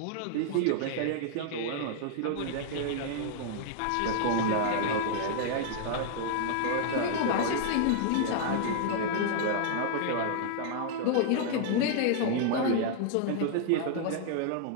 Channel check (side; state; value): both; different; correlation -0.01